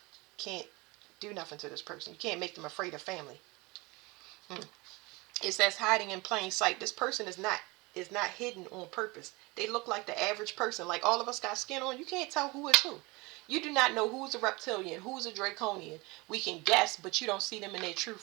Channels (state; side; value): quieter; left; 24.6 dB